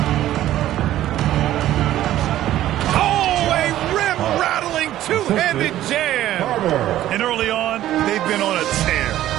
Oh, a rim-rattling two-handed jam. And early on, they've been on a tear.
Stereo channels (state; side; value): quieter; left; 13.4 dB